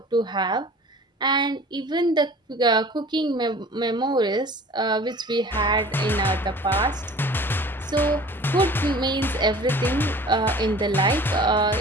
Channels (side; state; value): both; normal; correlation 0.45